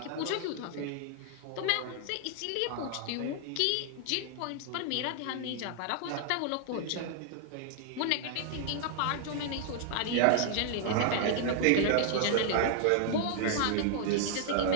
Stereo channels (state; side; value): different; both; correlation 0.00